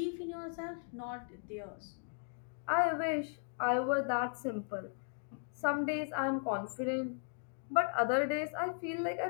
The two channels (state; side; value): silent; right; 53 dB below the other